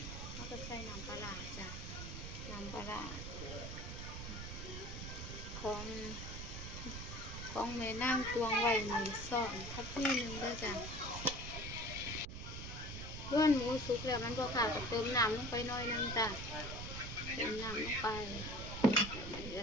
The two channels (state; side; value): noise; right; rumble, 7 dB below the sound